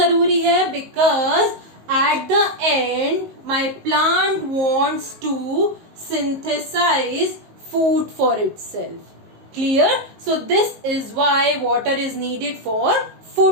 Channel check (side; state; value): left; late; 19 ms